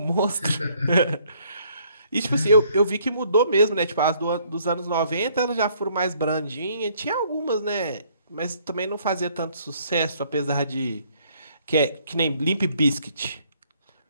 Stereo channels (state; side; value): inverted; both; correlation -0.64